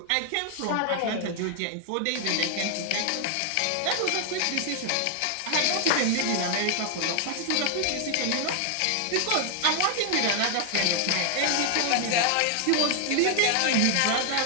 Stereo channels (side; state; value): both; different; correlation 0.00